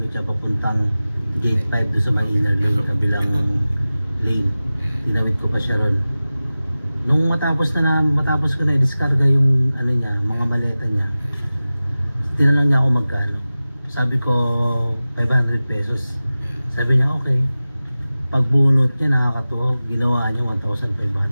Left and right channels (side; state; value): both; inverted; correlation -0.96